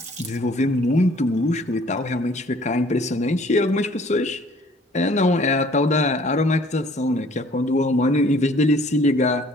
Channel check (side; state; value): both; normal; correlation 0.56